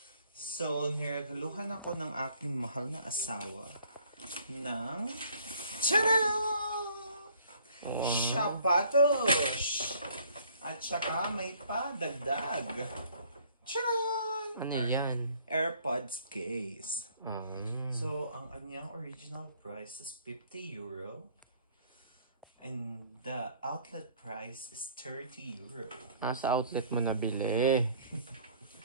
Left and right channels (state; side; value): inverted; both; correlation -0.58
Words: So, niregaluhan ako ng aking mahal na asawa ng sapatos! At saka may padagdag. Charan! Ano yan? AirPods case. Mm. So, ang kanyang original price is €50. And the outlet price is €30. Sa outlet mo nabili.